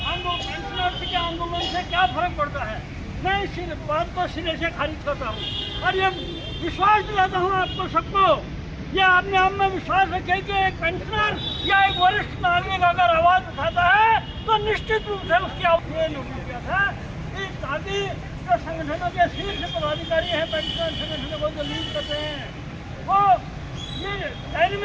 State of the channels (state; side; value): identical; both; correlation 1.00